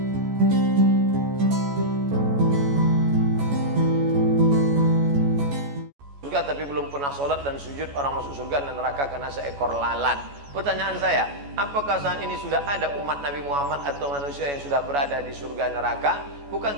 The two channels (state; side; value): late; left; 14 ms